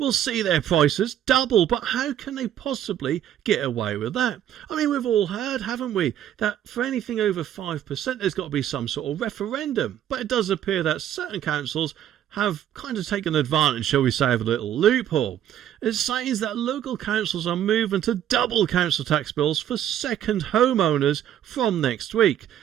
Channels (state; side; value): quieter; left; 10.9 dB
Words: see their prices double. But how can they possibly get away with that? I mean, we've all heard, haven't we, that for anything over 5% there's got to be some sort of referendum. But it does appear that certain councils have kind of taken advantage, shall we say, of a little loophole. It says that local councils are moving to double council tax bills for second homeowners from next week.